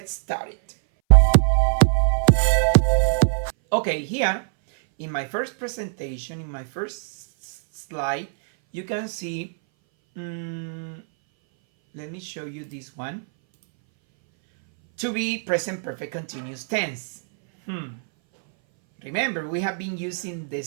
started. Okay, here in my first presentation, in my first slide, you can see, let me show you this one. To be present perfect continuous tense. Remember, we have been using the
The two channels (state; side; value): silent; left; 60 dB below the other